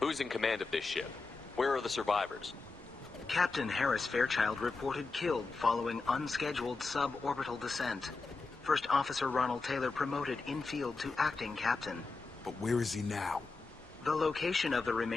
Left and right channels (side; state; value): right; quieter; 4.0 dB